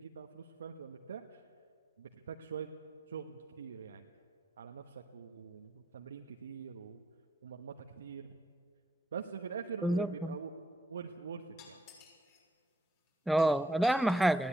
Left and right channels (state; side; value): normal; both; correlation 0.79